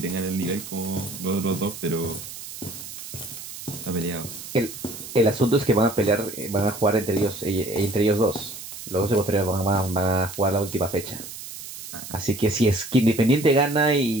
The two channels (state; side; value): noise; right; hiss, 12 dB below the sound